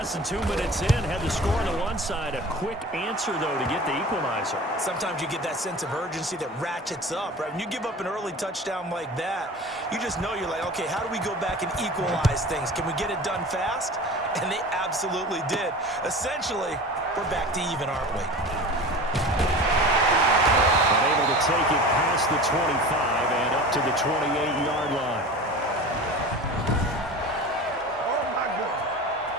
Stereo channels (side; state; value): both; normal; correlation 0.36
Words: than 2 minutes in, had the score on the one side. A quick answer, though, to get the equalizer. Sometimes you get that sense of urgency that ratchets up, right? When you give up an early touchdown like that, you just know you're like, okay, how do we go back and equalize things? Can we get it done fast? And they absolutely did. Essentially, we're back to even, aren't we? Able to take it past the 25 and up to the 28-yard line.